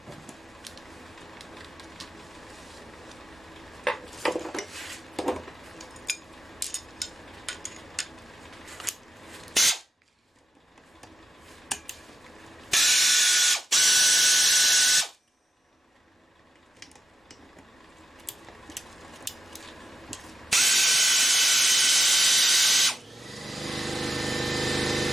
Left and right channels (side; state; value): both; normal; correlation 0.90